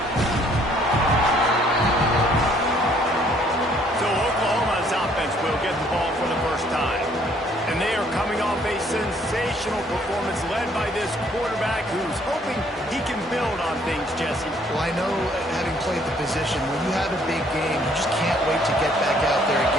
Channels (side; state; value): both; normal; correlation 0.63